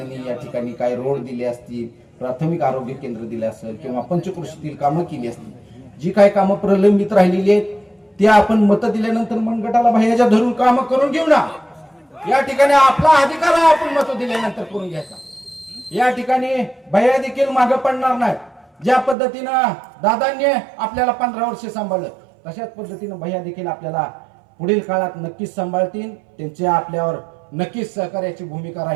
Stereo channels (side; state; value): left; drops out; at 19.2 s